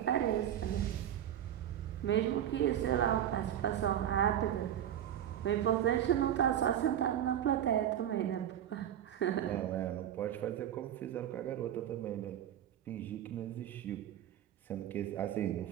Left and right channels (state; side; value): quieter; left; 10.7 dB